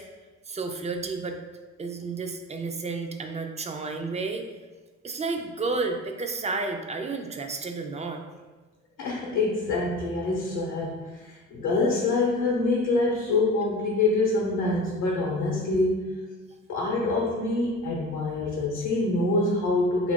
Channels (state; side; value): normal; both; correlation 0.35